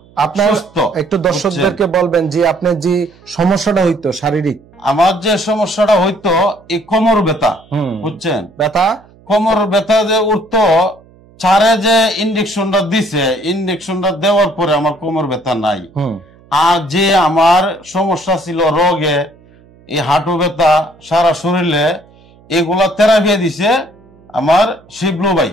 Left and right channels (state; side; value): noise; right; hum, 27 dB below the sound